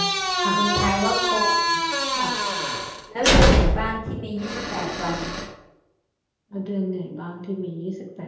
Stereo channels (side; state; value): both; identical; correlation 1.00